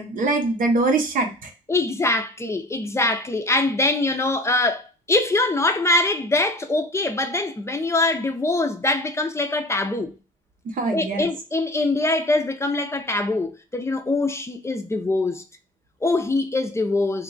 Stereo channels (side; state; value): both; normal; correlation 0.43